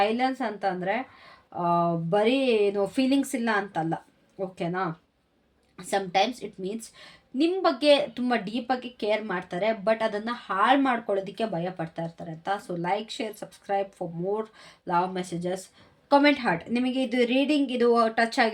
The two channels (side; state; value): both; identical; correlation 1.00